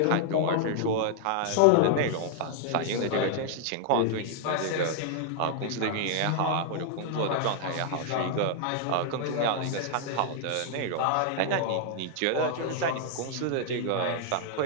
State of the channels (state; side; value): different; both; correlation 0.00